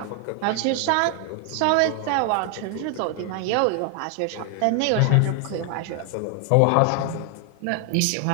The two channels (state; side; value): different; both; correlation 0.00